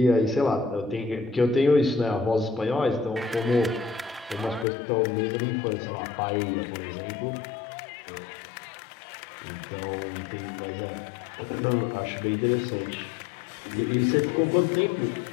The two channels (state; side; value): drops out; right; at 4.7 s